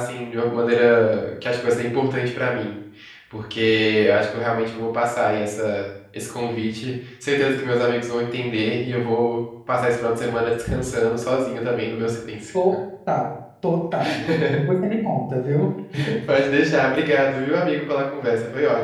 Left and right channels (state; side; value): identical; both; correlation 1.00